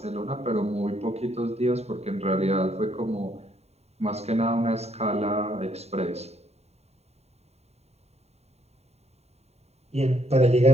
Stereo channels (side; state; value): left; late; 0.31 ms